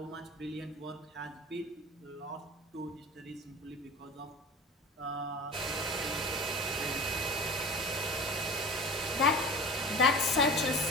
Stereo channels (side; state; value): both; normal; correlation 0.36